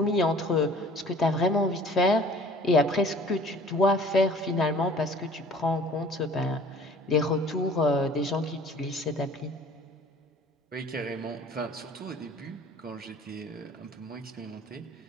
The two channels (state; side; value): normal; both; correlation 0.49